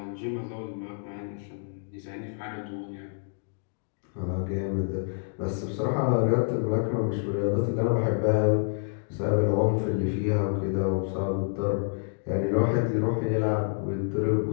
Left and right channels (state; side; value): silent; right; digital silence